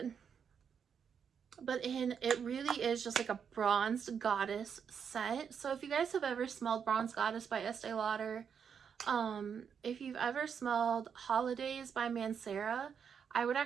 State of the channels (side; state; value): left; quieter; 7.1 dB